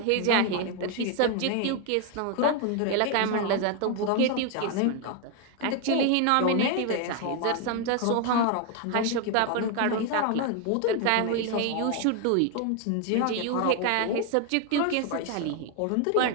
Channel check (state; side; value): different; both; correlation 0.01